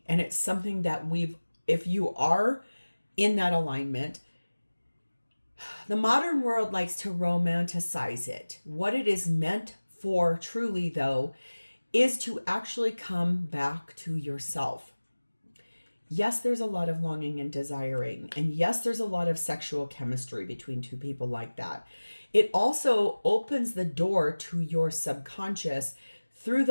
And it's something that if you are in that alignment, the modern world likes to romanticize it. What it is meant for truly, though, is to actually come back to yourself. Yes, there's a lot of longing and desiring. And yes, there's a lot of sexual chemistry between two people like that. It also opens the door to your subconscious through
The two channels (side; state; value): both; inverted; correlation -1.00